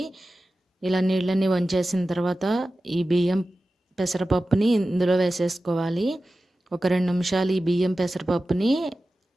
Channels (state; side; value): normal; both; correlation 0.94